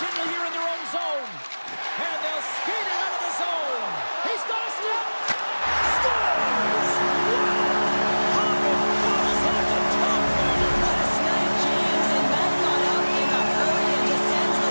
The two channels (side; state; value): both; inverted; correlation -1.00